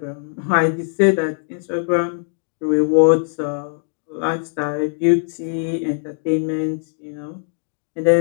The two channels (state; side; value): silent; right; digital silence